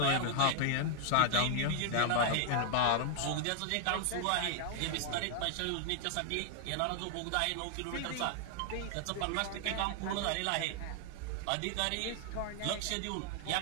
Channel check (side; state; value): both; different; correlation 0.00